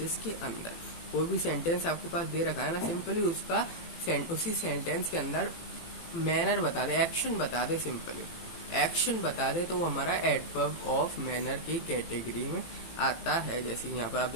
के अंदर। कोई भी सेंटेंस आपके पास दे रखा है ना, सिंपली उसी सेंटेंस के अंदर मैनर बता दे, एक्शन बता दे, तो वो हमारा एडवर्ब ऑफ मैनर की कैटेगरी में आता है। जैसे यहाँ पर आप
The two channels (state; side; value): late; right; 18 ms